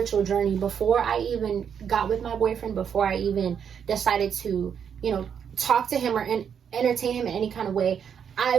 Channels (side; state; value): left; quieter; 7.7 dB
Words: journey before I even got with my boyfriend, before I even decided to, talk to him or entertain him in any kind of way. I